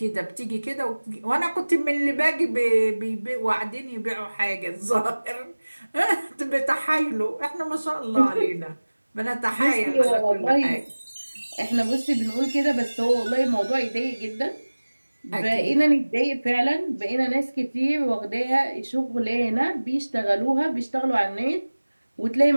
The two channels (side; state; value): both; inverted; correlation -1.00